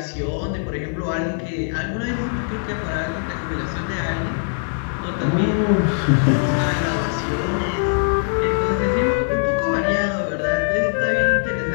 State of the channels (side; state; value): right; silent; 65 dB below the other